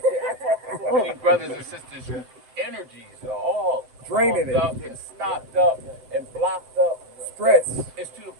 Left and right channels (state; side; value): late; left; 7.3 ms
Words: So many brothers and sisters whose energies are all Draining clogged up and stopped up and blocked up. Stress. It's to the